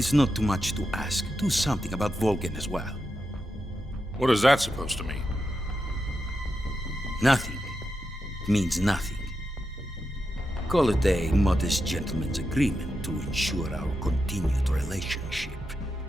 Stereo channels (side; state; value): both; normal; correlation 0.88